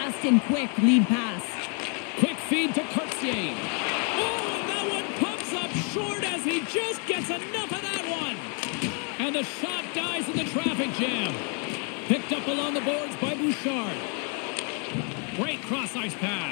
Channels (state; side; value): quieter; right; 38.5 dB